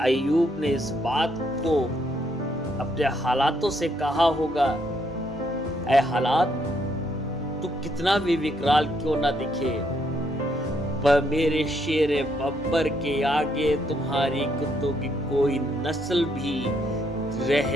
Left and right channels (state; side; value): normal; both; correlation 0.73